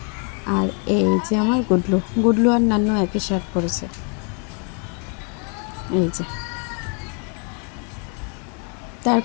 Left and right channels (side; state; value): right; quieter; 38.5 dB